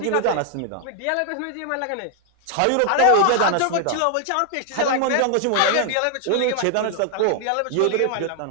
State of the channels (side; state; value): both; different; correlation 0.00